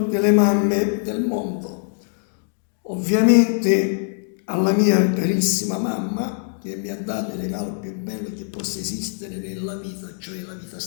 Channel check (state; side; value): silent; right; 64 dB below the other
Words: le mamme del mondo, ovviamente alla mia carissima mamma che mi ha dato il regalo più bello che possa esistere nella vita, cioè la vita